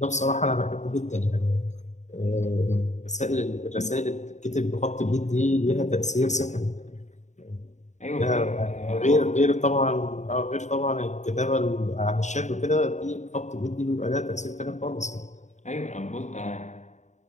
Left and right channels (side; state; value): right; late; 0.34 ms